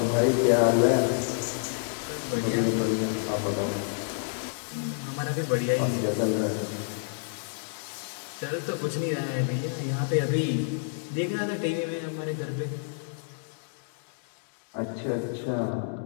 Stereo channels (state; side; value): silent; right; digital silence